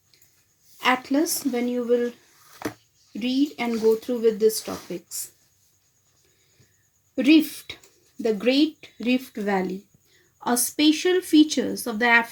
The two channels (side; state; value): both; identical; correlation 1.00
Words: atlas when you will read and go through with these topics. Rift, the Great Rift Valley. A special features of the